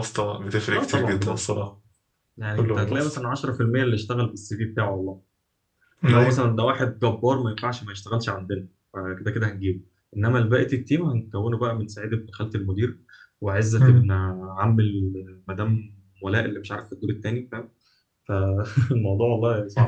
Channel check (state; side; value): identical; both; correlation 1.00